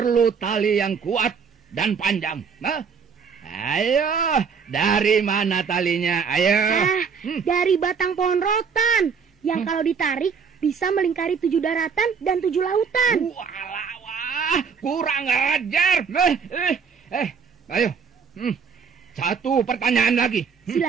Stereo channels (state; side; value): quieter; left; 6.2 dB